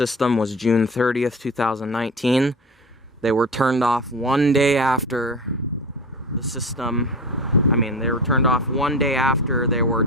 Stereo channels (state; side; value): normal; both; correlation 0.30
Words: was June 30th, 2019. They were turned off one day after the system. They were turned off one day after they were